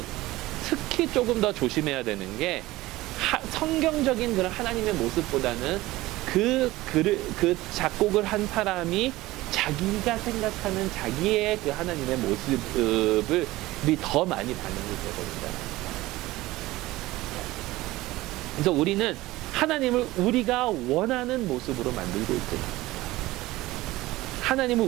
특히 조금 더 조심해야 되는 게, 성경적인 그런 하나님의 모습보다는 그 작곡을 한 사람이 자기가 생각하는 자기의 그 하나님의 모습을 더 많이 반영이 되거든요. 그래서 우리는 하나님을 우리가 원하는 모습으로 만들고 있습니다. 하나님을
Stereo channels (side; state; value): left; quieter; 18.3 dB